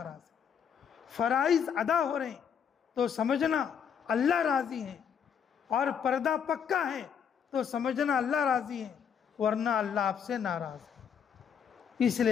ہے. فرائض ادا ہو رہے ہیں تو سمجھنا اللہ راضی ہیں. اور پردہ پکا ہے تو سمجھنا اللہ راضی ہے، ورنہ اللہ آپ سے ناراض ہے۔ اس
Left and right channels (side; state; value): right; quieter; 7.6 dB